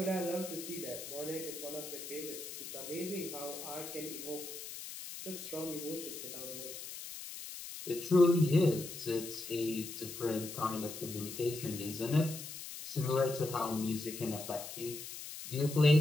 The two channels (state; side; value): noise; left; hiss, 10 dB below the sound